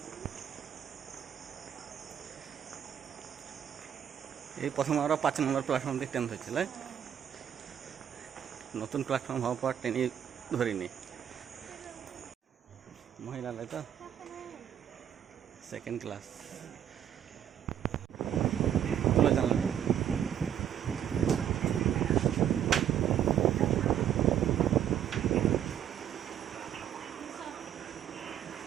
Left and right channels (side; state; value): left; quieter; 9.8 dB